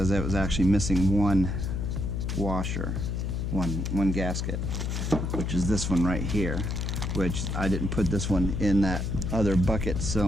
it was actually missing one washer, one gasket, which is this one right here, which I didn't put this one in that other bucket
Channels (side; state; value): left; noise; hum, 1 dB below the sound